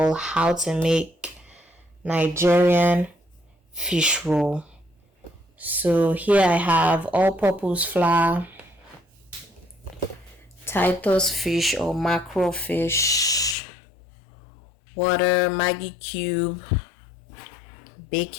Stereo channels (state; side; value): drops out; right; at 13.6 s